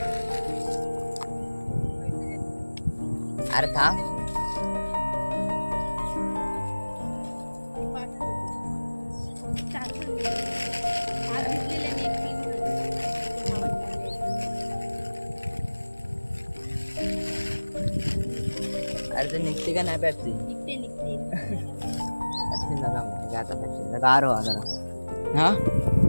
अरे थांब अरे ते निघते का नाही पेप्सी. पेप्सी नका मग आता, पेप्सी गार हो जरा. हा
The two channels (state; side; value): inverted; both; correlation -1.00